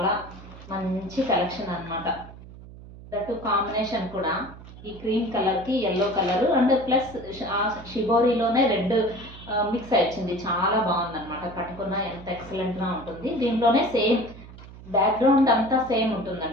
మంచి కలెక్షన్ అనమాట. దట్ కాంబినేషన్ కూడా ఈ క్రీమ్ కలర్కి ఎల్లో కలర్ అండ్ ప్లస్ షిబోరీలోనే రెడ్ మిక్స్ వచ్చింది. చాలా బాగుందన్నమాట. కట్టుకున్న ఎంత ఎక్సలెంట్గా ఉంటుంది. దీంట్లోనే సేమ్ బ్యాక్గ్రౌండ్ అంతా సేమ్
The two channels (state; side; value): noise; right; hum, 17 dB below the sound